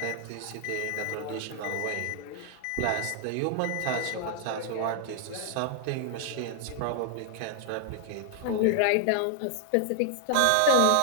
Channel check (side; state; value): both; different; correlation 0.00